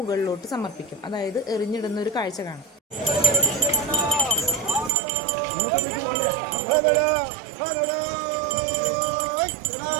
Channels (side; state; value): left; drops out; at 4.9 s